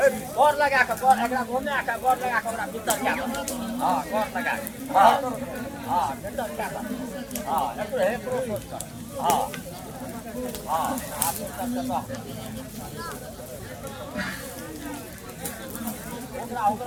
गोर लगा के गोर एकरा घुमे के गोर लगा के ओकरा भीतर क्या हां गोर लगा हां हां भीतर क्या हां एकरो हे प्रोसेस कर हां हां आप सब करता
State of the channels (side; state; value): both; identical; correlation 1.00